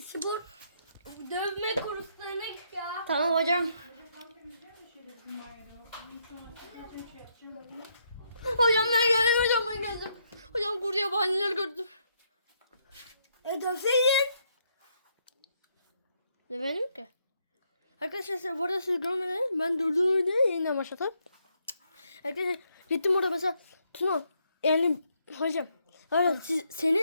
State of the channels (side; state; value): both; inverted; correlation -0.75